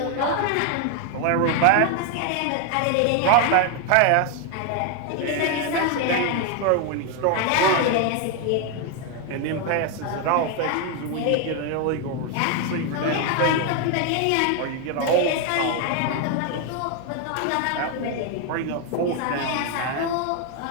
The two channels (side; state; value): both; different; correlation 0.01